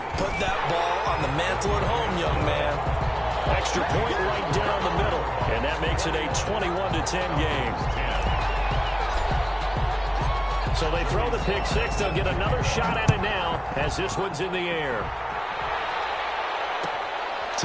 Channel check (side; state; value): both; identical; correlation 1.00